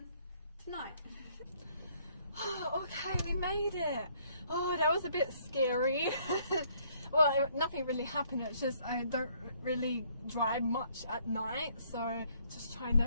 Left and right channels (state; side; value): inverted; both; correlation -0.65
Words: tonight. Oh, okay, we made it. Oh, that was a bit scary. well, nothing really happened. It's just I don't really drive much at night, so just trying